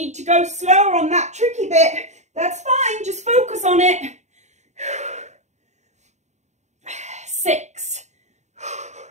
to go slower on that tricky bit, that's fine. Just focus on it. 6.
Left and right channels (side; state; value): left; late; 0.34 ms